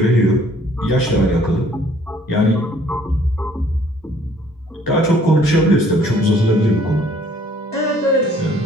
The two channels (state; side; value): normal; both; correlation 0.59